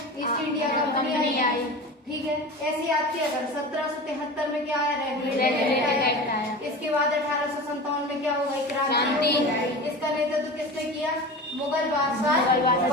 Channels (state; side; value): normal; both; correlation 0.32